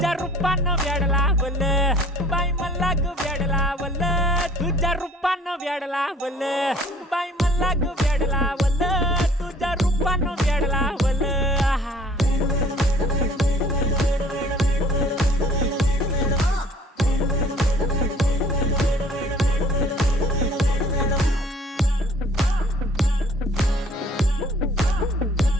रूपानं व्याड लावलं बाई मला ग व्याड लावलं तुझ्या रूपानं व्याड लावलं बाई मला ग व्याड लावलं तुझ्या रूपानं व्याड लावलं आहा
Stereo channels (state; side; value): normal; both; correlation 0.55